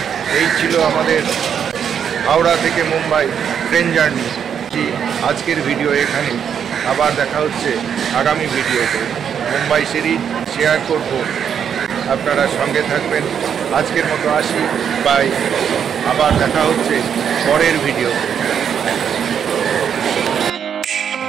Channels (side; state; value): left; quieter; 8.0 dB